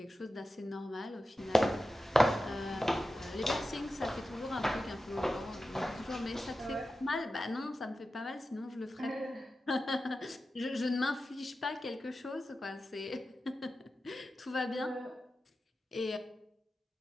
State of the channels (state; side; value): normal; both; correlation 0.92